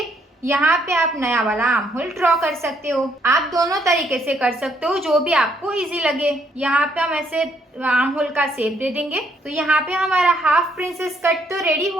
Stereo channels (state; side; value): normal; both; correlation 0.71